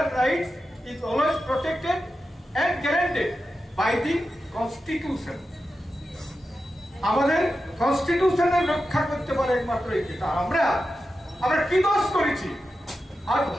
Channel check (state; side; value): normal; both; correlation 0.91